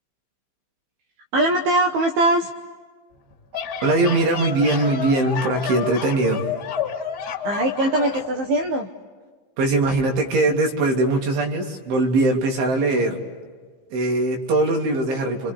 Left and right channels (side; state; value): left; late; 15 ms